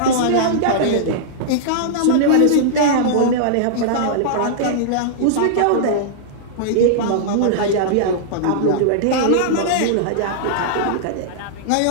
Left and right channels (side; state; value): both; different; correlation -0.02